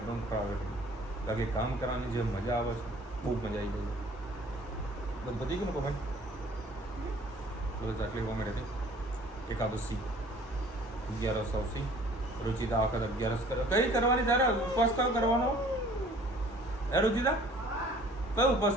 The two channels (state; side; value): normal; both; correlation 0.52